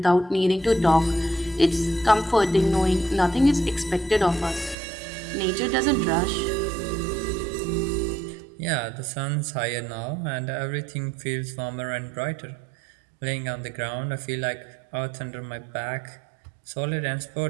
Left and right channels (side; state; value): left; drops out; at 4.8 s